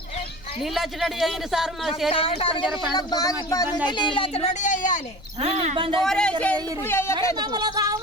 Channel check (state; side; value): noise; left; rumble, 21 dB below the sound